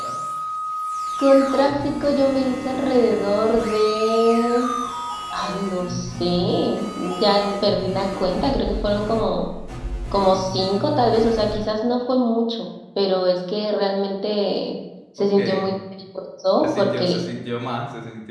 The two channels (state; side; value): identical; both; correlation 1.00